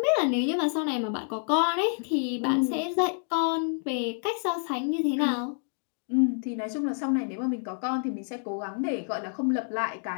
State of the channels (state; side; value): silent; right; 59 dB below the other